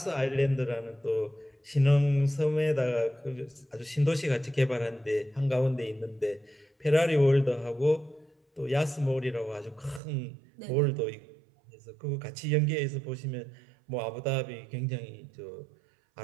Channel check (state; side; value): drops out; left; at 10.0 s